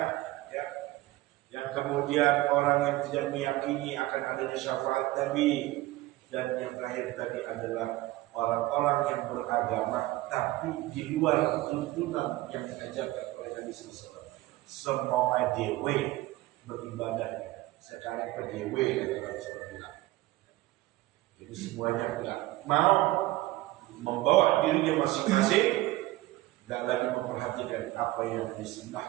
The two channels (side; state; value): left; quieter; 17.8 dB